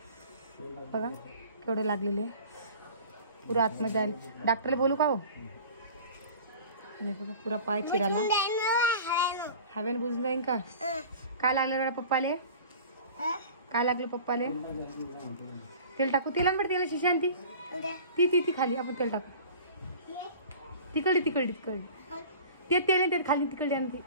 बघा केवढे लागलेले पुरा आतमध्ये जाईल. डॉक्टरला बोलू का हो. बघा पुरा पाय चिराला हवेला बुजून जाईन का. काय लागलं बेटा पप्पाले. काय लागलं पप्पाले. तेल टाकू. तेला बेटा तेला शिशांती ती ती ती खाली आपण तेल टाकू. तिकडे तिकडे तिकडे ते तेल ते खाली तिकडे आणते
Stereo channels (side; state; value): both; inverted; correlation -0.42